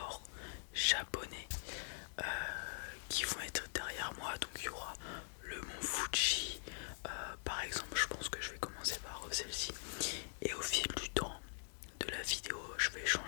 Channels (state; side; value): silent; right; digital silence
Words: japonais qui vont être derrière moi. Donc il y aura le mont Fuji par exemple. Je pense que je vais commencer par celle-ci et au fil du temps de la vidéo je vais